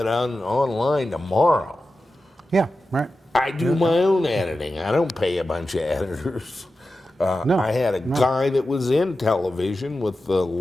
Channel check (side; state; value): both; normal; correlation 0.92